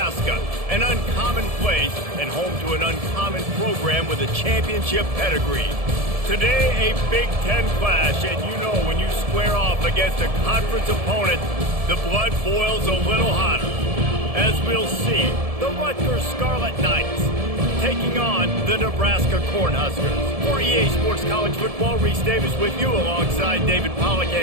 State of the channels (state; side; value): late; left; 1.7 ms